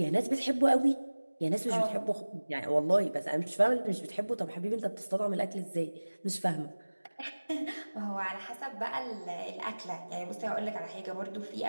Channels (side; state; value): both; inverted; correlation -1.00